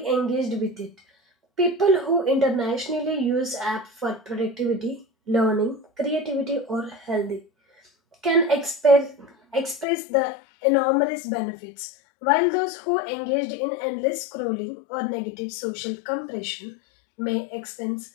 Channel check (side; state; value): right; drops out; at 9.9 s